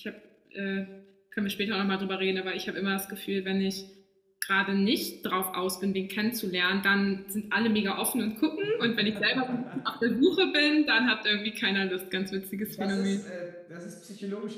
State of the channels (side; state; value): both; identical; correlation 1.00